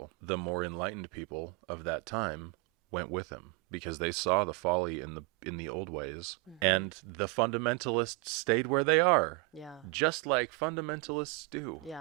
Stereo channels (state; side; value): quieter; left; 25.8 dB